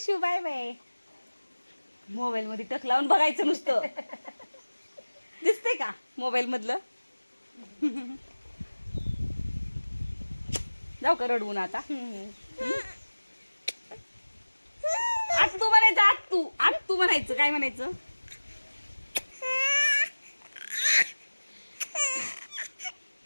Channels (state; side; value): inverted; both; correlation -1.00